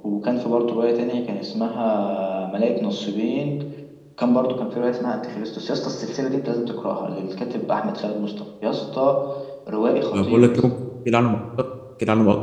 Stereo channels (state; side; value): identical; both; correlation 1.00